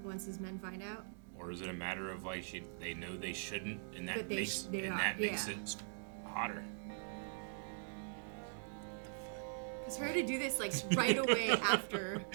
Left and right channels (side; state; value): left; silent; digital silence